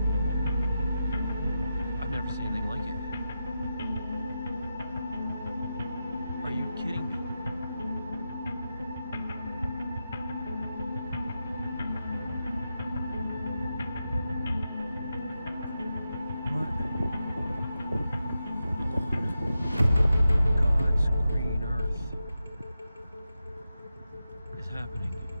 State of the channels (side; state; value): both; inverted; correlation -0.89